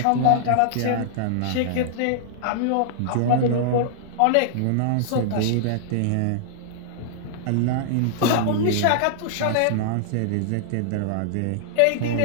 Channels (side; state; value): both; different; correlation -0.01